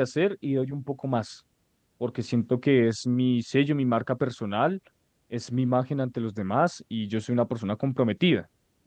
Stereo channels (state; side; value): identical; both; correlation 1.00